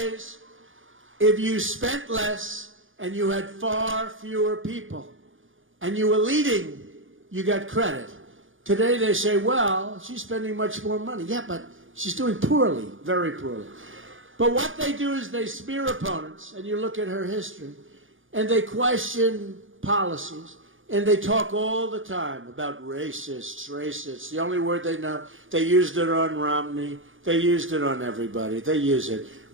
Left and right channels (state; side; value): late; left; 0.58 ms